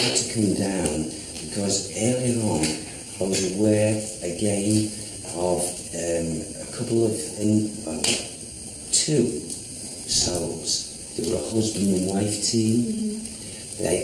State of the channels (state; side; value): identical; both; correlation 1.00